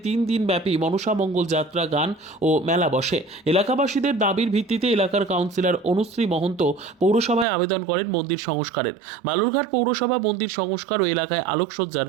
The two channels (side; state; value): left; drops out; at 7.5 s